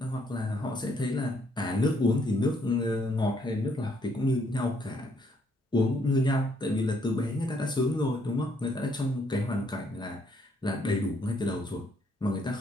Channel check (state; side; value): normal; both; correlation 0.70